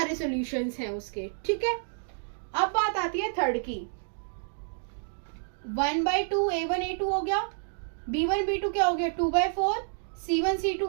सॉल्यूशंस हैं उसके, ठीक है। अब बात आती है थर्ड की, 1/2 A1 A2 हो गया, B1 B2 क्या हो गया 2/4, C1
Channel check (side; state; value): left; silent; digital silence